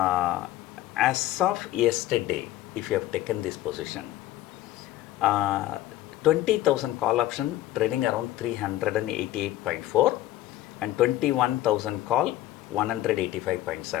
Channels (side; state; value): right; quieter; 14.8 dB